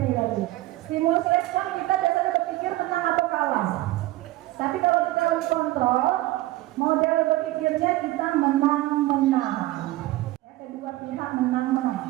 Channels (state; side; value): quieter; left; 17.5 dB